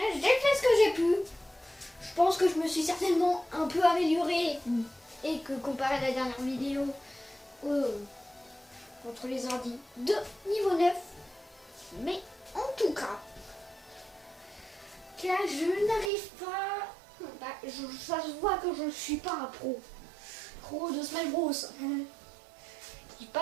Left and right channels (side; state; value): left; drops out; at 16.1 s